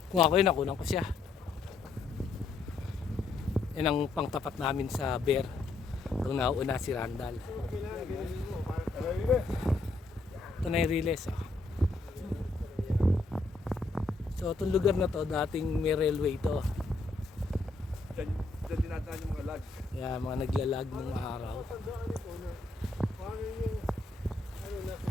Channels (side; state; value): right; quieter; 3.5 dB